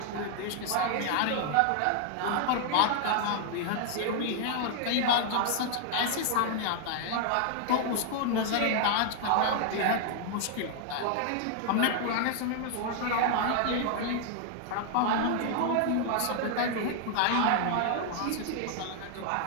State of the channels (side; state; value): both; different; correlation 0.00